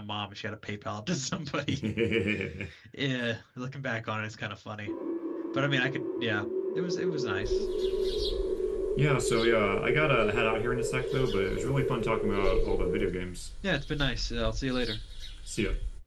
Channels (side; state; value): both; identical; correlation 1.00